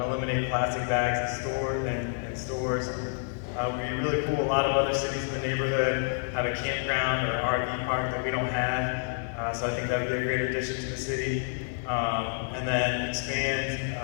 eliminate plastic bags in stores. It would be really cool. A lot of other cities in the neighborhood have a campground or RV park that we don't have. So I think that would be a great addition to the city. And then expand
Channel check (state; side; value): silent; right; 59 dB below the other